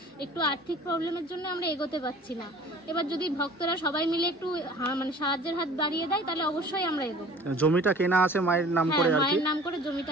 একটু আর্থিক প্রবলেমের জন্য আমরা এগোতে পারছি না। এবার যদি ভক্তরা সবাই মিলে একটু মানে সাহায্যের হাত বাড়িয়ে দেয় তাহলে অবশ্যই আমরা এগোবো। জমিটা কেনা আছে মায়ের নাম করে আর কি, মায়ের নাম করে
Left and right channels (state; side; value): normal; both; correlation 0.47